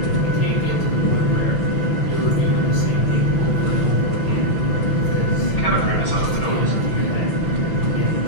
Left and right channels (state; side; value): late; right; 6.1 ms